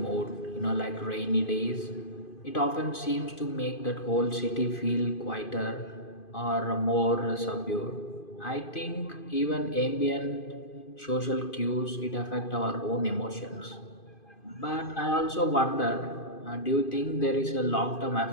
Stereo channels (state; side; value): late; right; 2.5 ms